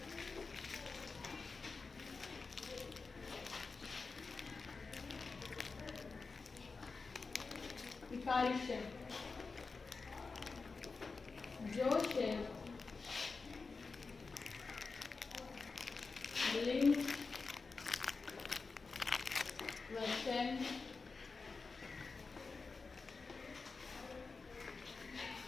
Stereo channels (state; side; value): quieter; right; 4.3 dB